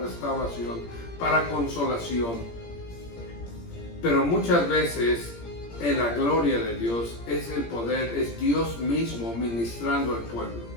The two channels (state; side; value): late; right; 17 ms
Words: para consolación. Pero muchas veces en la gloria de Dios es el poder, es Dios mismo ministrando al pueblo.